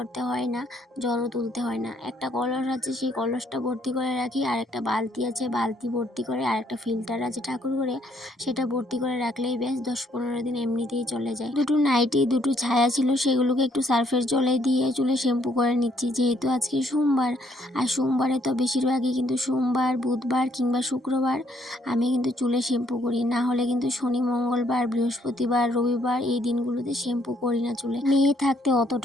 হয় না, জলও তুলতে হয় না। একটা কলস আছে, সেই কলসটা ভর্তি করে রাখি, আর একটা বালতি আছে, বালতি ভর্তি করে, আর একটা ফিল্টার আছে ঠাকুর ঘরে, সেটা ভর্তি করে রাখলেই বেশ 10-15 দিন এমনিতেই চলে যায়। দুটো নাইটি, দুটো ছায়া ছিল, সেগুলোকে একটু সার্ফের জলে দিয়ে চুলে শ্যাম্পু করে নিচ্ছি, যেহেতু আজকে সোমবার। আর সোমবারে তো বেশিরভাগই কিন্তু সোমবার, বুধবার কিংবা শুক্রবার আমি কিন্তু চুলে শ্যাম্পু করি। না হলে কিন্তু শনি, মঙ্গলবার, বৃহস্পতিবার, রবিবার এই দিনগুলোতে শ্যাম্পু করি না চুলে। মেয়ে থাকতে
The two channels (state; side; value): normal; both; correlation 0.68